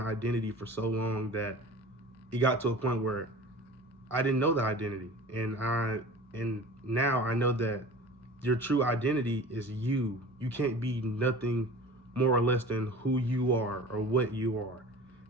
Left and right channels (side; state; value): both; normal; correlation 0.40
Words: identity for so long that it got to a point where I didn't know the identity, and now I know that your true identity is you. You can't be nothing more or less than who you are or what you are.